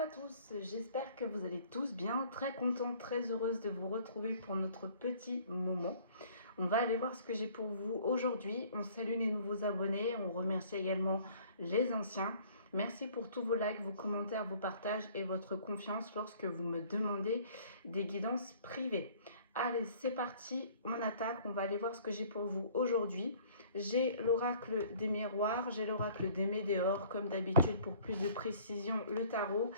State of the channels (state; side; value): inverted; both; correlation -0.54